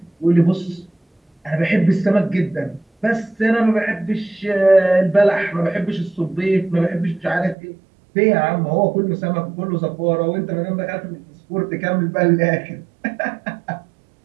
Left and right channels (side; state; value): left; drops out; at 7.6 s